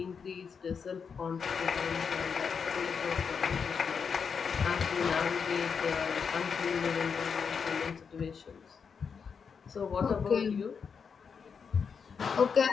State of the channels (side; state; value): right; quieter; 6.1 dB